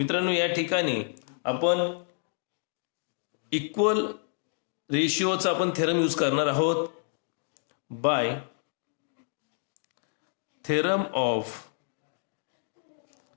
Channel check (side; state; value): right; silent; digital silence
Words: या ठिकाणी आपण इक्वल रेशिओचा आपण थेरम यूज करणार आहोत. By theorem of